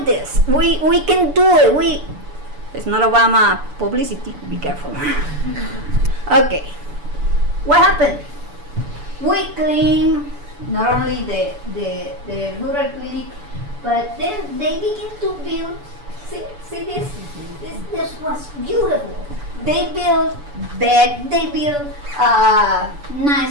this. We can do it. It's not Obama publicity. Be careful. Okay. What happened? We clean not only the rural clinic, but then they begin to build. See this? This was beautiful. They built bed, they built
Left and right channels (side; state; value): left; late; 7.0 ms